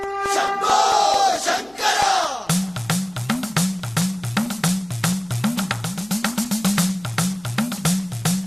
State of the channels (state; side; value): noise; left; hum, 30 dB below the sound